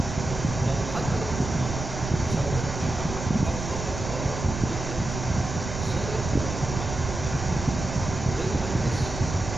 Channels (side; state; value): right; noise; rumble, 6 dB below the sound